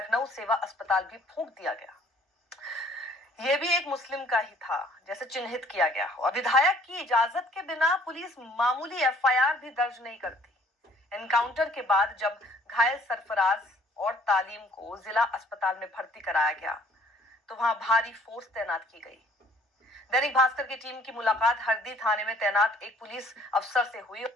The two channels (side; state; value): both; normal; correlation 0.58